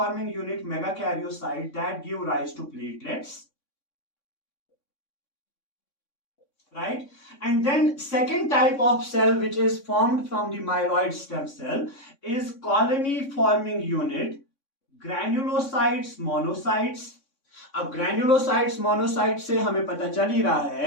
unit megakaryocyte that give rise to platelets, right? And then second type of cell which is formed from the myeloid stem cell is colony forming unit granulocytes monocytes. अब granulocytes monocytes से हमें पता चल ही रहा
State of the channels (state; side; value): late; right; 3.6 ms